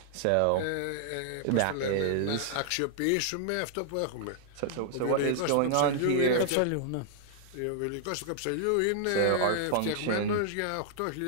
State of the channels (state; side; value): different; both; correlation -0.01